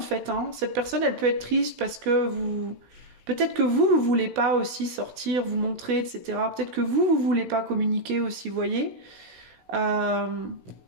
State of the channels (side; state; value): left; late; 16 ms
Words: fait. Hein. Cette personne, elle peut être triste parce que peut-être que vous voulez pas aussi sortir, vous montrer, etc. Peut-être que vous voulez pas communiquer aussi, vous voyez.